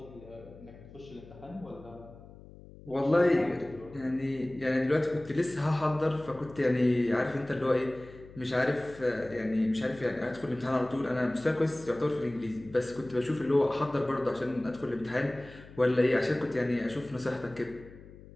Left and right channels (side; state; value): left; noise; hum, 19 dB below the sound